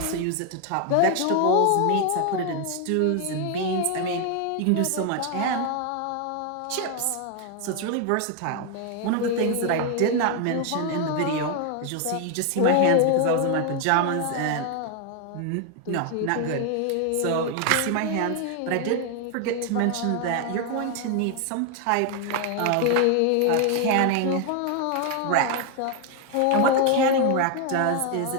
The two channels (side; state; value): both; different; correlation 0.01